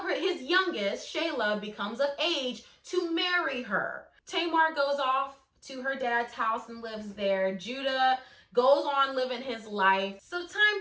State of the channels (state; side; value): identical; both; correlation 1.00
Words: his youngest, Shelah, becomes of age to marry her. Tamar goes off to her dad's house and lives there. Judah goes on living his life. So